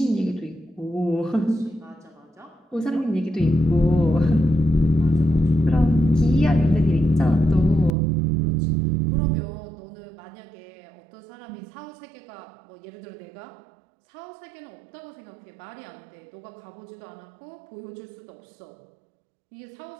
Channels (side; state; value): left; drops out; at 7.9 s